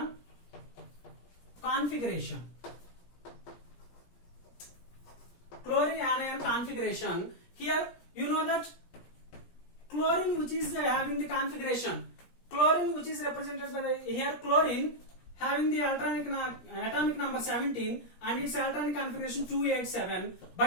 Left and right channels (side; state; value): right; late; 17 ms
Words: configuration. Chlorine anion configuration. Here you know that chlorine which is having the configuration. Chlorine which is represented by the here chlorine having the atomic number 17 and its electronic configuration 287.